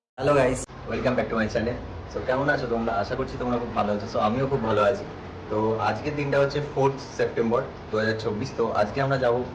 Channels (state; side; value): identical; both; correlation 1.00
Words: Hello guys, welcome back to my channel. So কেমন আছো তোমরা? আশা করছি তোমরা খুব ভালো আছো। সো আমিও খুব ভালো আছি। তো আজকের দিনটা হচ্ছে 4 সেপ্টেম্বর 2024। তো আজকে আমরা যাব